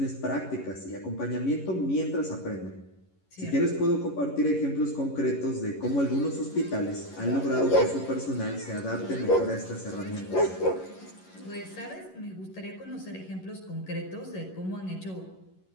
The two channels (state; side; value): late; right; 11 ms